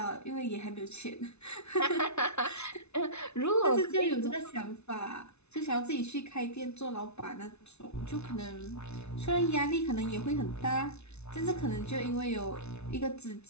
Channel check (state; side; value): late; right; 0.81 ms